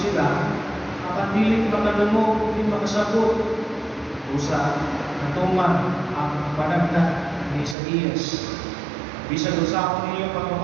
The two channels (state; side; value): drops out; left; at 7.8 s